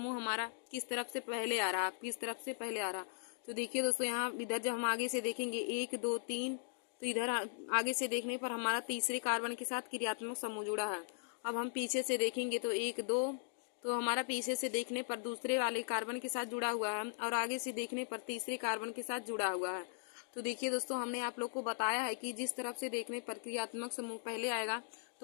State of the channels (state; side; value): silent; right; digital silence